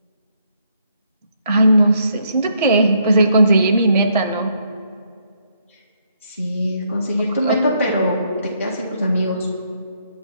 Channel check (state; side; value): inverted; both; correlation -0.73